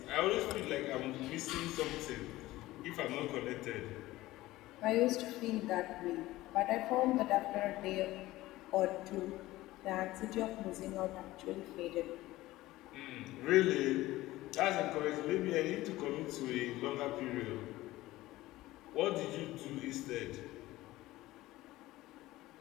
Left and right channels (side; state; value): right; quieter; 17.4 dB